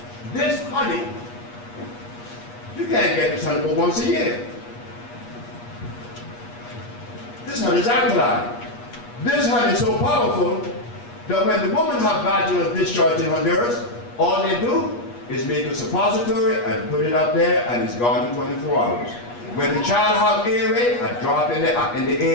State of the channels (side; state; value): right; late; 8.4 ms